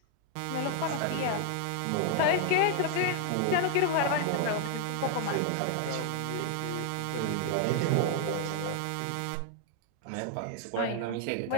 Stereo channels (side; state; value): both; different; correlation 0.00